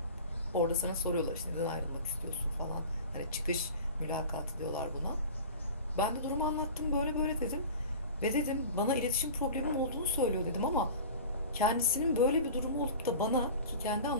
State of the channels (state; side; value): inverted; both; correlation -0.36